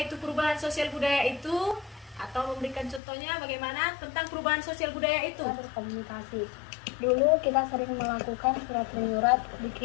itu perubahan sosial budaya itu? Atau memberikan contohnya bagaimana tentang perubahan sosial budaya itu? Berkomunikasi. Dulu kita sering melakukan surat menyurat,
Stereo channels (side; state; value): right; drops out; at 3.0 s